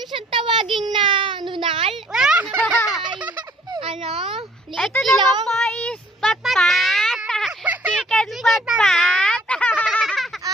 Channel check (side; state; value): both; normal; correlation 0.59